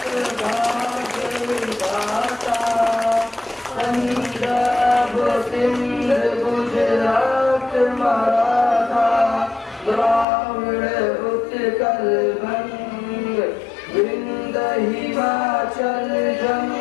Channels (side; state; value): right; drops out; at 10.2 s